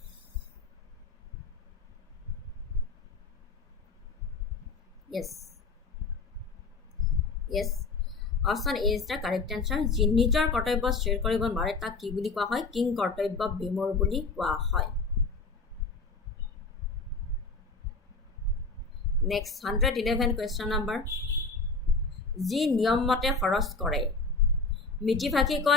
Yes. Option A is the correct answer. যি নিজৰ কৰ্তব্য স্থিৰ কৰিব নোৱাৰে তাক কি বুলি কোৱা হয়? কিং কৰ্তব্য বিমূঢ় বুলি কোৱা হয়। Next 111 question number. যি নিয়ম মতে খৰচ কৰে, মিতভাষী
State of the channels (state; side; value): quieter; right; 4.0 dB